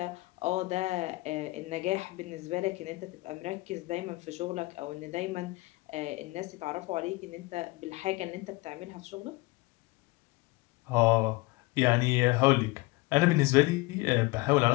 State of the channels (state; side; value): quieter; right; 22.2 dB